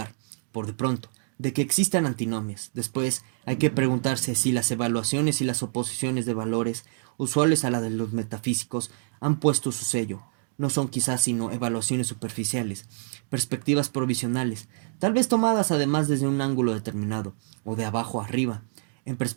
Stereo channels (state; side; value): silent; left; digital silence